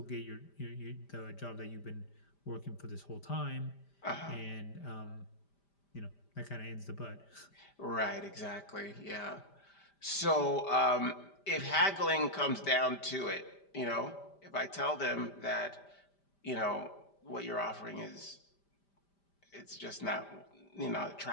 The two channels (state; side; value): late; right; 5.0 ms